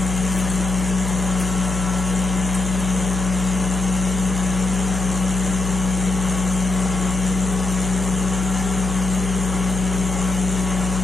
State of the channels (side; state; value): left; noise; hum, 3 dB below the sound